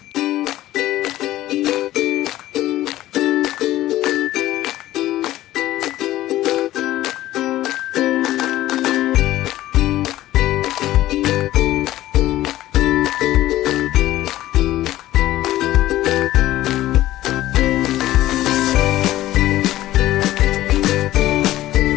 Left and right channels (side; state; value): right; quieter; 14.9 dB